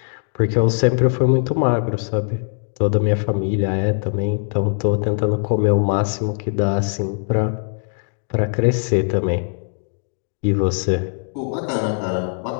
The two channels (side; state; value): right; silent; 65 dB below the other